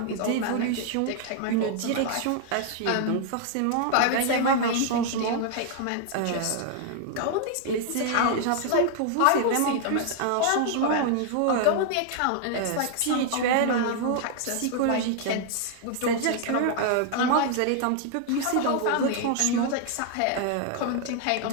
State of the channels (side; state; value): both; different; correlation 0.00